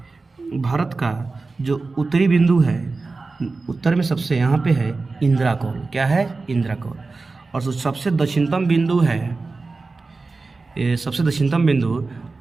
भारत का जो उत्तरी बिंदु है, उत्तर में सबसे यहाँ पे है इंदिरा कौल। क्या है? इंदिरा कौल। और जो सबसे दक्षिणतम बिंदु है, ये सबसे दक्षिणतम बिंदु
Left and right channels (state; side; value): quieter; left; 3.8 dB